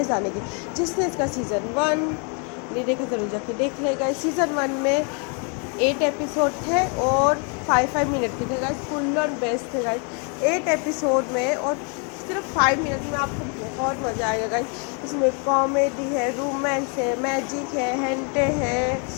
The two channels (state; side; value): quieter; right; 37.5 dB